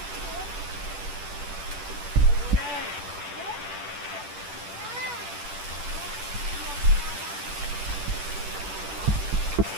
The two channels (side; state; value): left; late; 10 ms